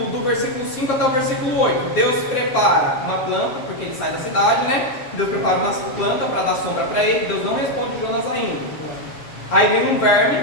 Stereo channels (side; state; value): right; late; 7.4 ms